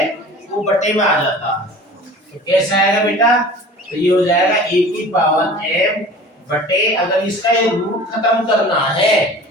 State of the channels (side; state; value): both; normal; correlation 0.42